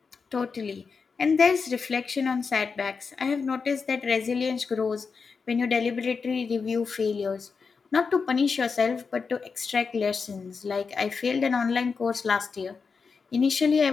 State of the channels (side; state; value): right; quieter; 5.2 dB